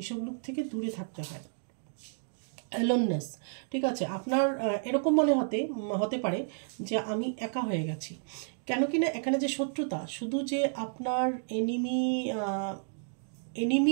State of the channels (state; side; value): silent; left; digital silence